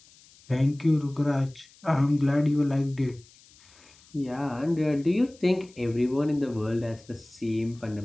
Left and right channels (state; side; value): noise; left; hiss, 26 dB below the sound